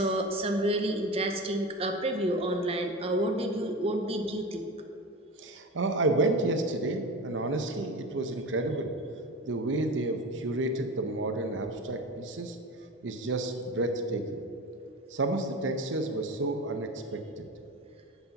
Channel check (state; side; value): normal; both; correlation 0.28